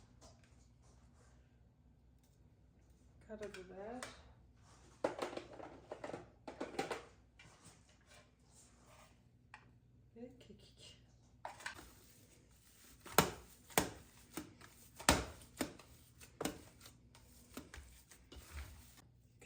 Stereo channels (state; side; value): identical; both; correlation 1.00